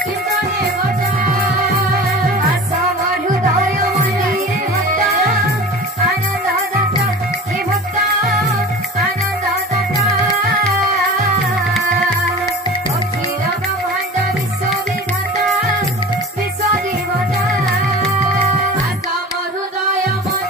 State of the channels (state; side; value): normal; both; correlation 0.37